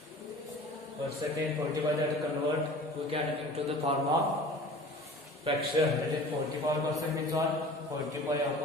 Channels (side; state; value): both; normal; correlation 0.42